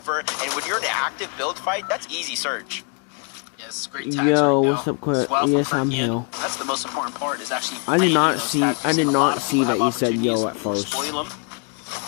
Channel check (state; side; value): quieter; right; 37.5 dB